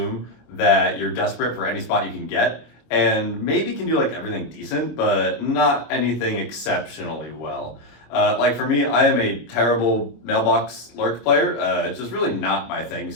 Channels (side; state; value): right; late; 26 ms